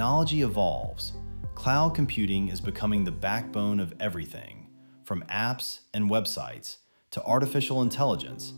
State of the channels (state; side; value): inverted; both; correlation -1.00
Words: evolves, cloud computing is becoming the backbone of everything, from apps and websites to artificial intelligence